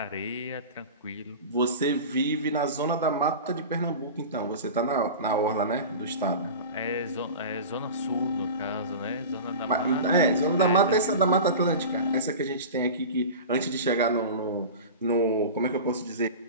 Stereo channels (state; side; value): inverted; both; correlation -0.32